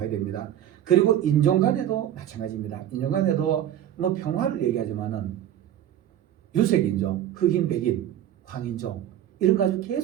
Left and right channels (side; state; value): left; quieter; 11.2 dB